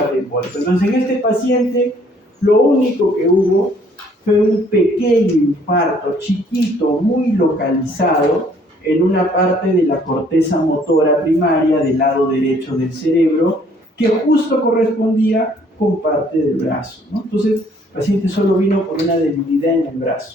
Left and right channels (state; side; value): normal; both; correlation 0.61